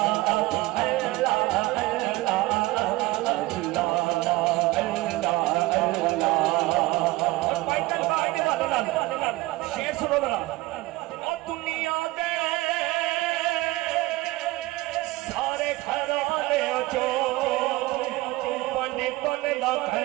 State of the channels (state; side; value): quieter; left; 19.8 dB